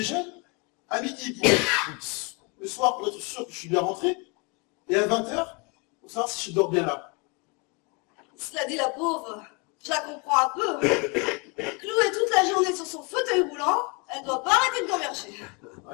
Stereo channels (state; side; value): quieter; right; 30.6 dB